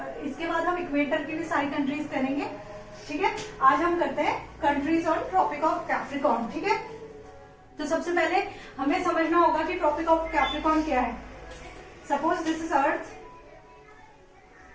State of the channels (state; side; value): identical; both; correlation 1.00